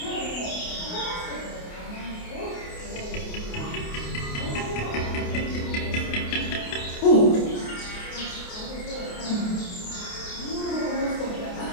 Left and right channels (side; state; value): right; late; 28 ms